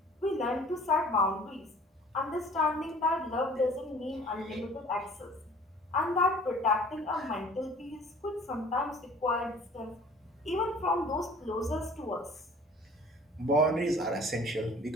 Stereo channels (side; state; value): both; normal; correlation 0.50